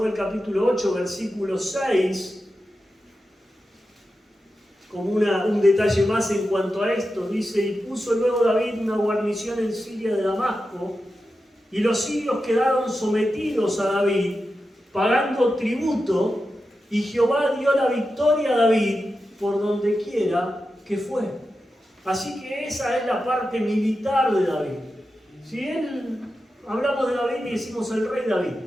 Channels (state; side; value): normal; both; correlation 0.90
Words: capítulo 8, versículo 6, como un detalle más en cuanto a esto. Dice, y puso luego David una guarnición en Siria de Damasco, y los sirios quedaron sometidos a David, pagando tributo, y Jehová dio la victoria a David por donde quiera que fue. Así que esa es la parte militar de David. Si hablamos de David y decimos el rey David,